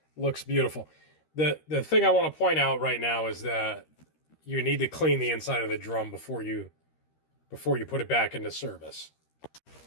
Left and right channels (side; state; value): right; late; 13 ms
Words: looks beautiful. The thing I want to point out right now is that you need to clean the inside of the drum before you put it back into service.